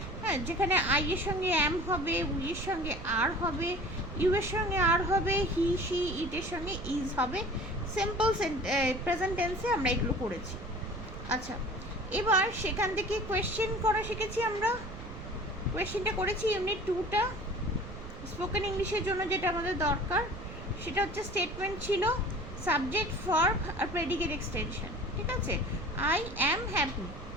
হ্যাঁ, যেখানে আই এর সঙ্গে এম হবে, উই এর সঙ্গে আর হবে, ইউ এর সঙ্গে আর হবে, হি শি ইটের সঙ্গে ইজ হবে। সিম্পল প্রেজেন্ট টেন্সে আমরা এগুলো করেছি। আচ্ছা, এবার সেখান থেকে কোয়েশ্চেন করা শিখেছি আমরা। কোয়েশ্চেনটা করেছি ইউনিট 2টা স্পোকেন ইংলিশের জন্য। যেটা আমাদের দরকার সেটা হচ্ছে স্টেটমেন্ট ছিল, সাবজেক্ট, ভার্ব আর প্রেডিকেট এক্সটেনশন। ঠিক আছে? I am happy,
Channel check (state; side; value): noise; right; rumble, 13 dB below the sound